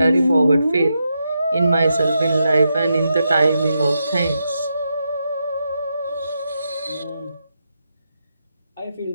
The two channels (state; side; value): inverted; both; correlation -0.85